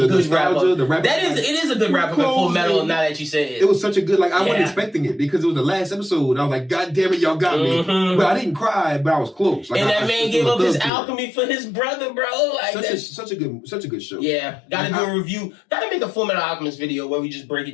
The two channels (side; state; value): right; drops out; at 10.9 s